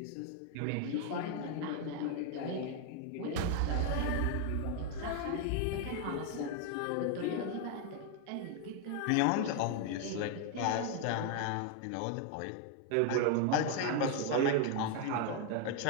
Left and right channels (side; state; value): both; different; correlation 0.00